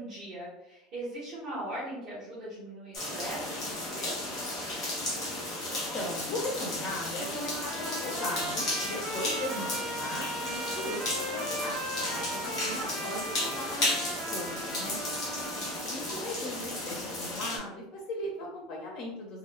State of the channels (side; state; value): both; normal; correlation 0.30